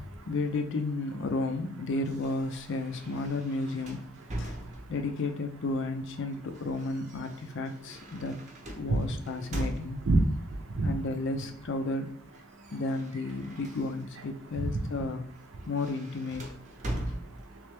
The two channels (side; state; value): both; normal; correlation 0.62